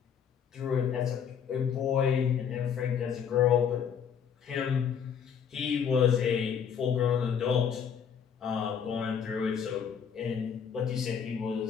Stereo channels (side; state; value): right; quieter; 7.6 dB